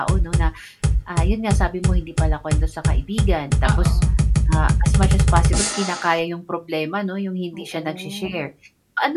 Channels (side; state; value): both; identical; correlation 1.00